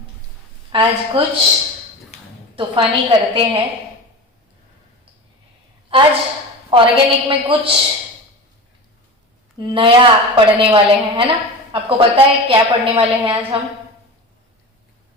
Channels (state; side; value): normal; both; correlation 0.30